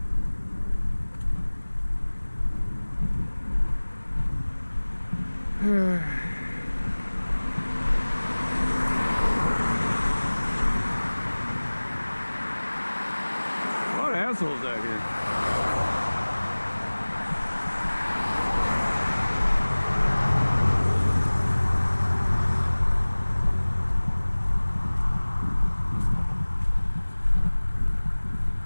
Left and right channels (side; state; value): both; inverted; correlation -1.00